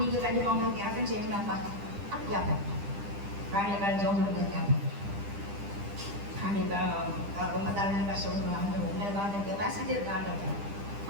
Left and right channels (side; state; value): left; late; 10 ms